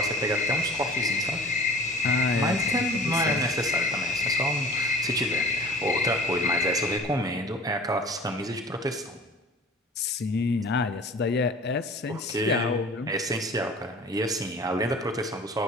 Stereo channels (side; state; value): both; normal; correlation 0.44